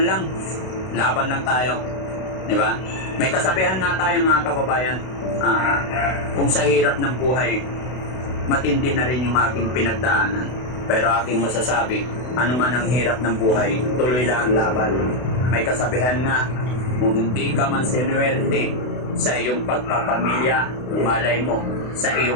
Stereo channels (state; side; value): late; right; 32 ms